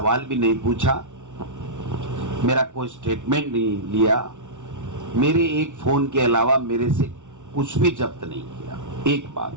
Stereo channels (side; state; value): left; late; 0.86 ms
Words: भी नहीं पूछा, मेरा कोई स्टेटमेंट नहीं लिया, मेरे एक फोन के अलावा मेरे से कुछ भी जब्त नहीं किया। एक